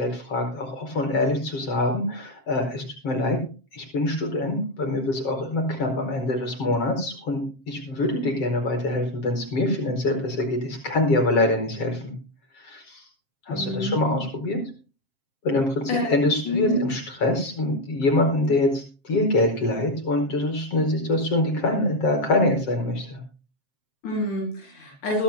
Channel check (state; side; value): late; right; 7.5 ms